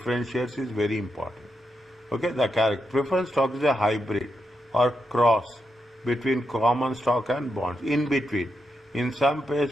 shares is very important. Okay, the preference stock is a hybrid or cross between common stock and bonds. In between, in some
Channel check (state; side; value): normal; both; correlation 0.84